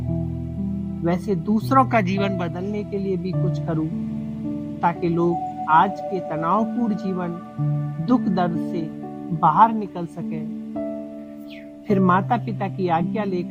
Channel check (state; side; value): identical; both; correlation 1.00